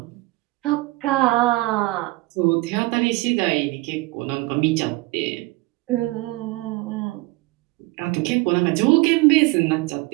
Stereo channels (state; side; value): quieter; left; 21.8 dB